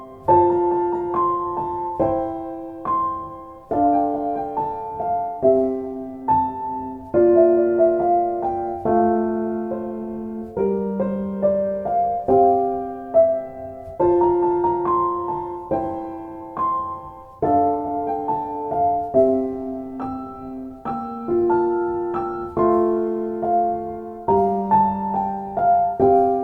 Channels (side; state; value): both; identical; correlation 1.00